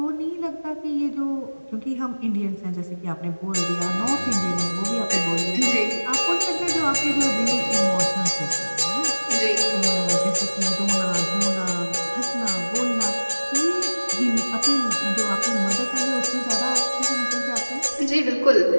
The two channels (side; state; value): both; inverted; correlation -1.00